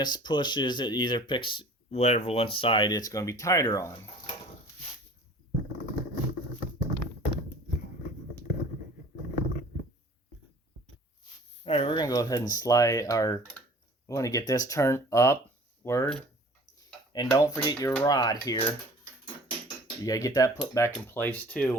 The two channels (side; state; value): both; normal; correlation 0.47